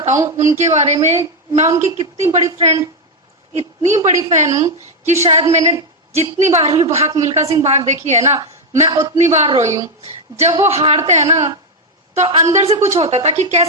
उनके बारे में। मैं उनकी कितनी बड़ी फ्रेंड, इतनी बड़ी फैन हूं कि शायद मैंने जितनी बार भी भाग मिल्खा सिंह भाग देखी है ना, मैं उतनी बार रोई हूं। जब वो हारते हैं ना तो अंदर से कुछ होता था कि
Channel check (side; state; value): both; normal; correlation 0.04